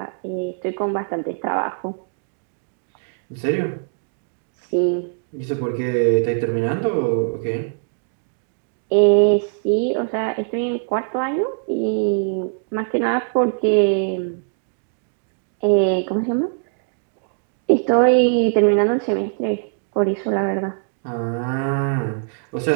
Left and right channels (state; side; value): silent; left; digital silence